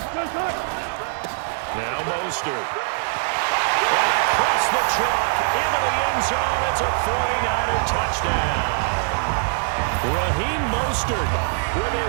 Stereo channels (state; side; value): silent; left; digital silence